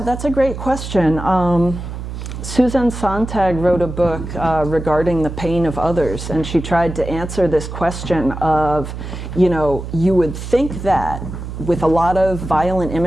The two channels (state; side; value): noise; right; hum, 8 dB below the sound